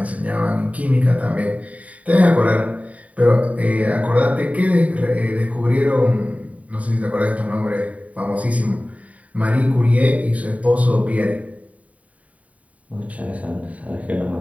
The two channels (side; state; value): left; late; 0.069 ms